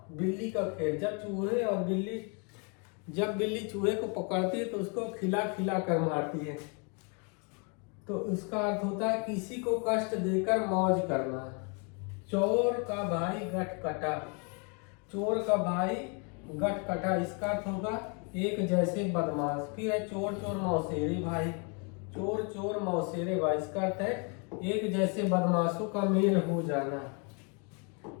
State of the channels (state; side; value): quieter; right; 35.3 dB